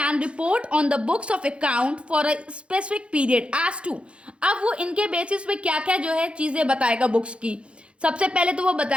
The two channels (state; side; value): late; left; 0.059 ms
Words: report on the books of account for a specific period as to। अब वो इनके बेसिस पे क्या क्या जो है चीज़ें बताएगा बुक्स की। सबसे पहले तो वो